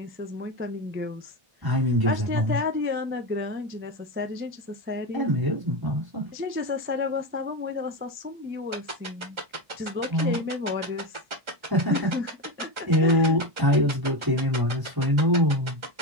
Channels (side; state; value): left; late; 1.3 ms